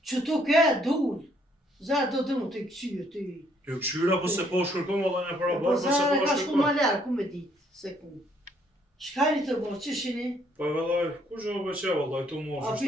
Që tu ke, dull. Za do të mu të këqyë, ty. Jo këshyra, po se po shkërkom, valla në para Po barë, po se za po ka shku shkërkom. ma ljarë, ku me ditë, se ku. Shkajni të bo, që shini? Po vallaj, ku zho bëqe, vallaj, tu morë, A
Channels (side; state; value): both; normal; correlation 0.67